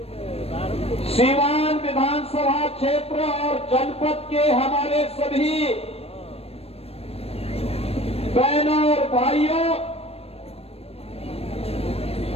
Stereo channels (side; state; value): right; late; 0.29 ms